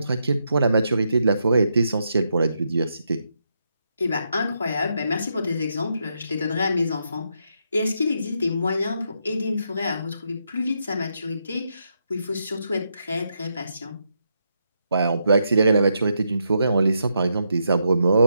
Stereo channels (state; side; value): inverted; both; correlation -0.80